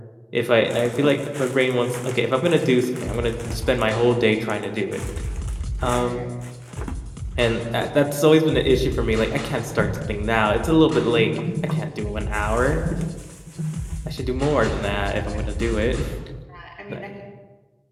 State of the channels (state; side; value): identical; both; correlation 1.00